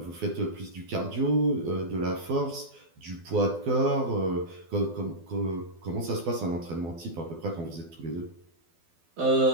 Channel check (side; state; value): left; late; 12 ms